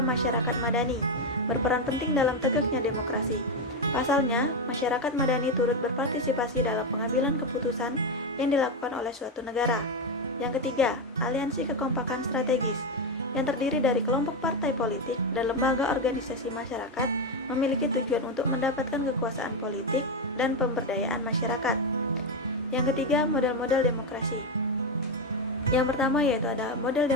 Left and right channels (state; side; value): normal; both; correlation 0.08